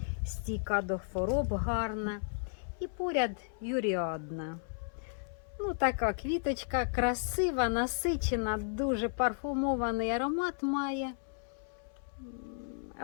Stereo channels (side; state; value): right; silent; 55 dB below the other